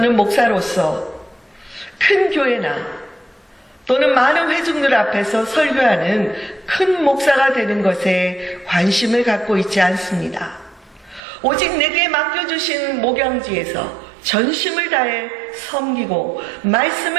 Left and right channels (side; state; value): left; drops out; at 11.2 s